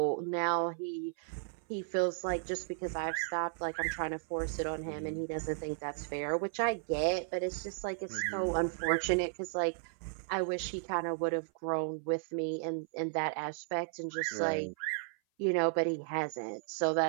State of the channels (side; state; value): left; silent; 55 dB below the other